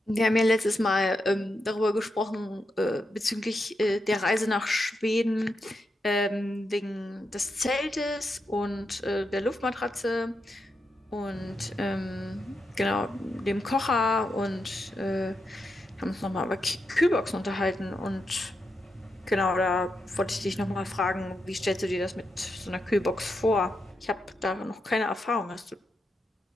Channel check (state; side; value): normal; both; correlation 0.85